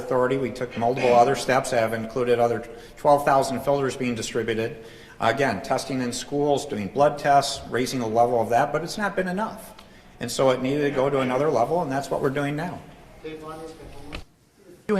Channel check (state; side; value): identical; both; correlation 1.00